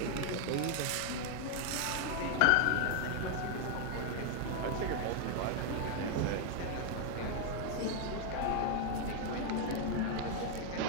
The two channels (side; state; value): both; different; correlation 0.00